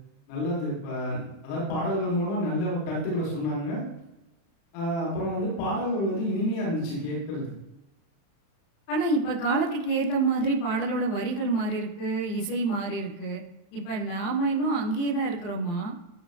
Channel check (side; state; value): right; late; 35 ms